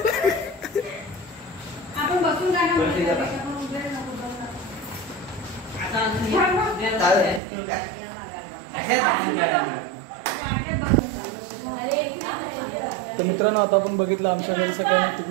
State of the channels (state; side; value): drops out; left; at 7.4 s